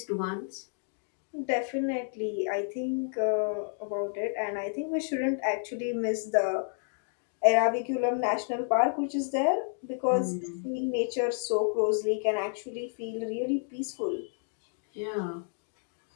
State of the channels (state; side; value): silent; right; digital silence